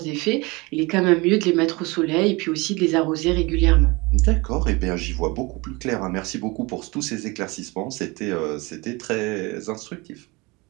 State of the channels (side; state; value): left; quieter; 25.0 dB